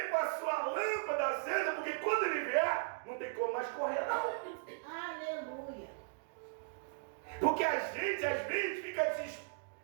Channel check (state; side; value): silent; left; digital silence